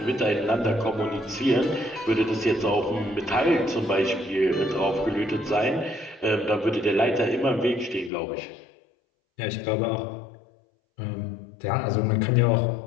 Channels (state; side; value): drops out; right; at 8.1 s